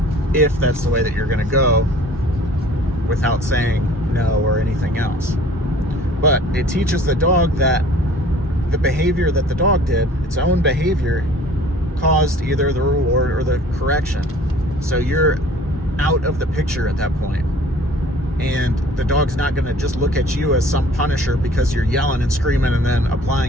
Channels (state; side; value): normal; both; correlation 0.50